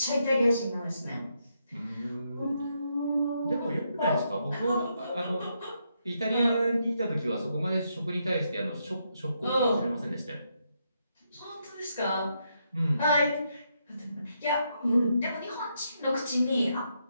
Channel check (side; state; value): both; inverted; correlation -0.79